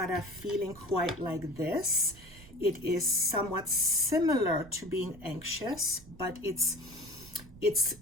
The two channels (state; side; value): noise; right; rumble, 20 dB below the sound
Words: a feeling quite like this. It is somewhat similar to being anxious, but